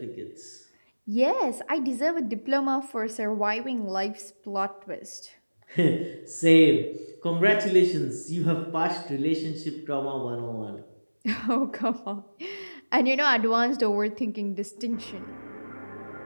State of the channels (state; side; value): inverted; both; correlation -1.00